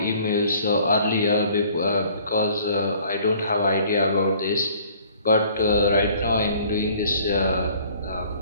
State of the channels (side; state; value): both; inverted; correlation -0.55